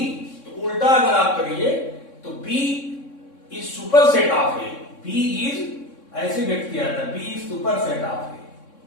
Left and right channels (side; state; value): right; late; 3.6 ms